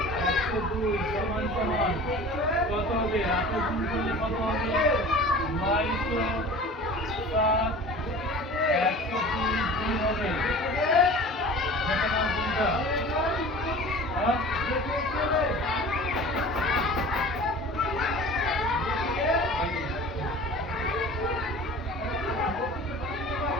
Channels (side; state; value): both; normal; correlation 0.41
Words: 102 সমান সমান কত হবে? 8 গুণ করলে কত হবে? 907 102 গুণ হবে। এটা নাম কোনটা? হ্যাঁ?